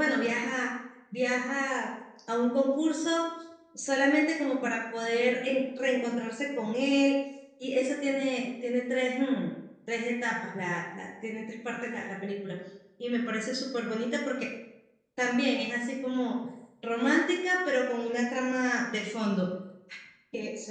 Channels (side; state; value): both; identical; correlation 1.00